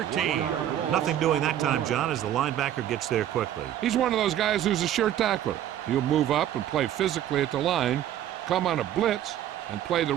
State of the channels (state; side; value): quieter; left; 11.4 dB